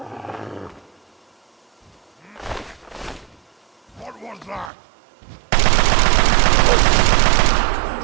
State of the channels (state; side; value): drops out; left; at 4.7 s